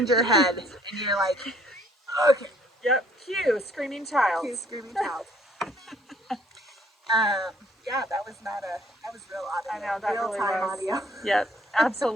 your head, and you're like, okay. Yep. Cue screaming child. Cue screaming child. Yeah, that was real audio. I know, that real really time was. audio. Yep,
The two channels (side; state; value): both; normal; correlation 0.61